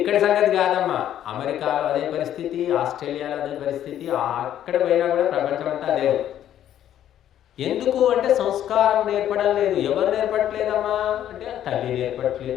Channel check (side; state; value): right; quieter; 11.1 dB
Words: సంగతి కాదమ్మా, అమెరికాలో అదే పరిస్థితి, ఆస్ట్రేలియాలో అదే పరిస్థితి, అక్కడ పోయినా కూడా ప్రపంచం అంతా అదే. ఎందుకు అంటే సంస్కారం నేర్పడం లేదు. ఎవరు నేర్పట్లేదమ్మా అంటే తల్లి